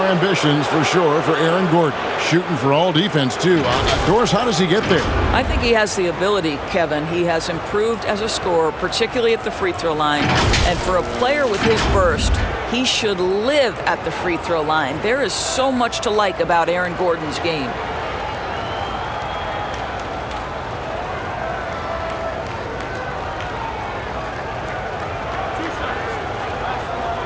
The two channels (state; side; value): identical; both; correlation 1.00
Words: ambitions for sure for Aaron Gordon. Shooting for all defense, too. Doris, how does he get there? I think he has the ability, Kevin. He has improved as a scorer, particularly at the free throw line. And for a player with his burst, he should live at the free throw line. There is so much to like about Aaron Gordon's game.